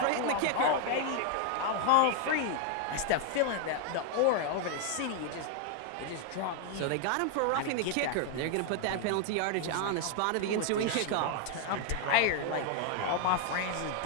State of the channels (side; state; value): both; different; correlation 0.00